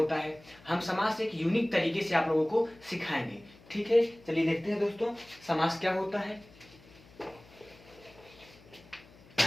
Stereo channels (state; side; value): noise; left; hum, 24 dB below the sound